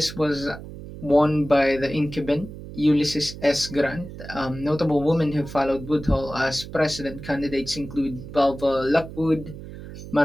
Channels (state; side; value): noise; right; hum, 13 dB below the sound